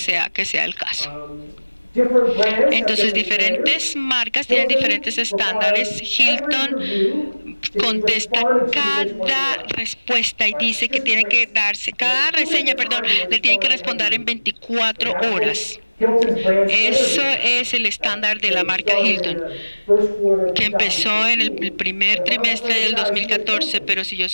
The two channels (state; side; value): inverted; both; correlation -1.00